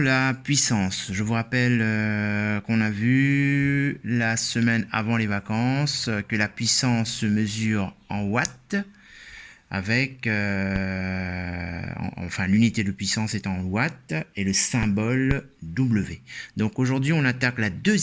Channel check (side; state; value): both; identical; correlation 1.00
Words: puissance. Je vous rappelle qu'on a vu la semaine avant les vacances que la puissance se mesure en watts avec, enfin l'unité de puissance est en watts et le symbole W. Donc aujourd'hui on attaque la